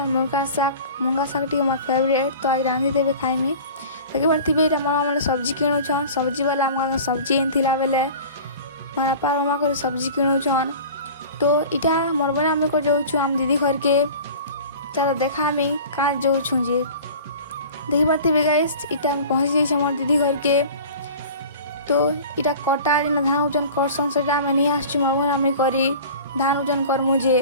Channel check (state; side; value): inverted; both; correlation -0.40